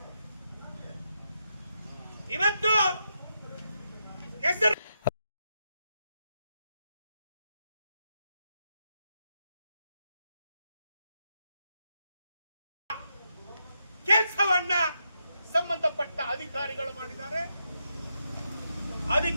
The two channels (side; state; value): both; inverted; correlation -0.83